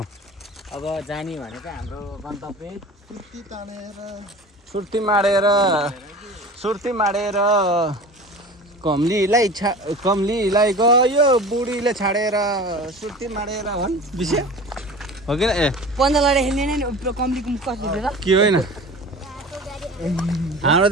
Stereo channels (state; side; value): normal; both; correlation 0.37